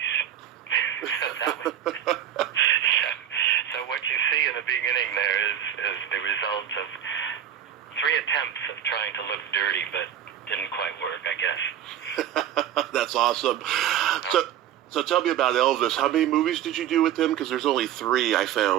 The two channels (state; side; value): quieter; left; 10.5 dB